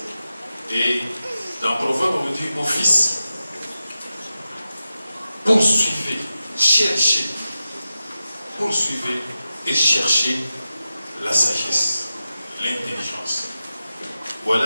Et dans Proverbe, on dit, mon fils, poursuivez, cherchez, poursuivez et cherchez la sagesse, l'intelligence.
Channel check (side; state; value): both; inverted; correlation -0.91